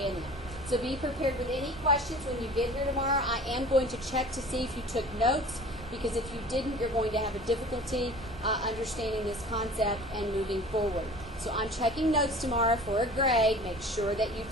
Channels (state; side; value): normal; both; correlation 0.43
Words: them. So be prepared with any questions when you get here tomorrow. I am going to check to see if you took notes. because if you didn't, you're going to have a difficulty understanding this concept and moving forward. So I'm checking notes tomorrow for a grade. Make sure that you've